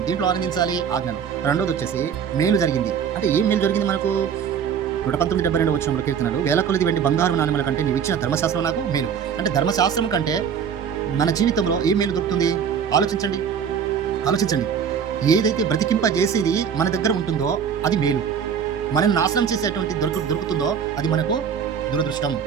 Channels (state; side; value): quieter; left; 7.4 dB